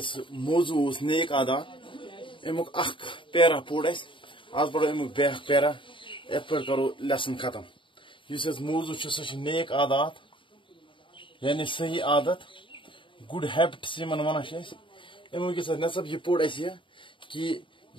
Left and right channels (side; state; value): right; late; 0.24 ms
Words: موضوع نیک عادات امیک اخ پیرا پور آج پڑھو امیک بیاکھ پیرا ات پہ کرو لیسن ختم اس موضوع سہ نیک عادات یعنی صحیح عادت گڈ ہیبٹس یمن ونان امیک نصب یہ پوڑ کہ